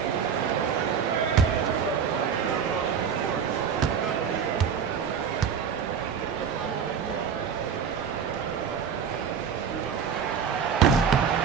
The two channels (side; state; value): left; quieter; 7.2 dB